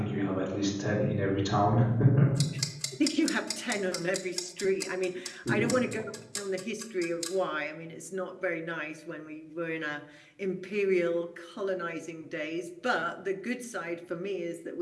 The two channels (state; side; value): identical; both; correlation 1.00